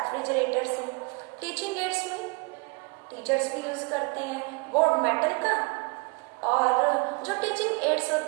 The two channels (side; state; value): left; quieter; 31.0 dB